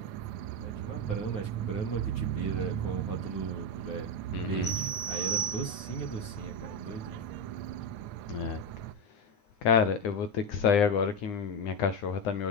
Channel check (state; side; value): late; right; 9.5 ms